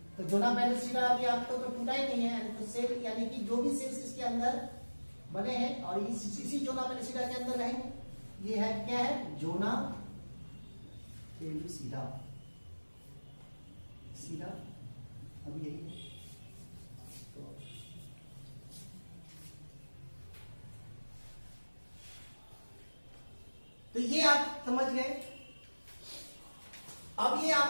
तो जोना पेलिसिडा अभी आपको तो टूटा ही नहीं है, तो सेल यानी कि जो भी सेल्स इसके अंदर बने हैं और इसी जोना पेलिसिडा के अंदर रहेंगे। ये है क्या है, जोना पेलिसिडा, सीधा अब यही है। तो ये आप समझ गए। अब ये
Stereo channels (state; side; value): inverted; both; correlation -1.00